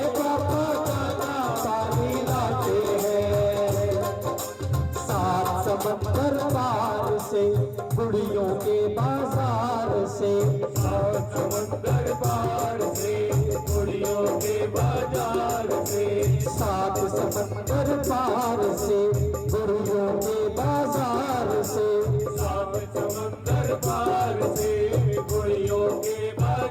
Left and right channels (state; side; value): identical; both; correlation 1.00